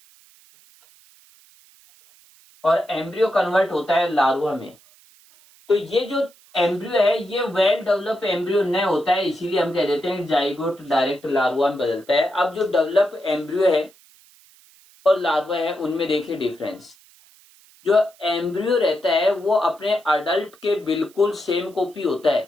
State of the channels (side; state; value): right; noise; hiss, 28 dB below the sound